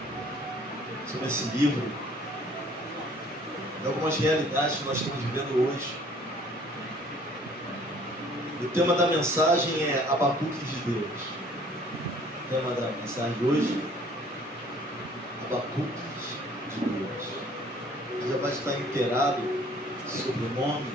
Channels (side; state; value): both; normal; correlation 0.55